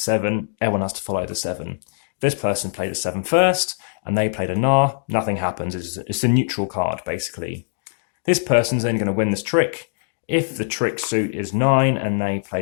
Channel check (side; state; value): right; silent; digital silence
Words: everyone has to follow the 7. This person played a 7 first, and they played a Nar, nothing happens. It's a neutral card, basically. This person's only going to win this trick. If the trick suit is 9 and they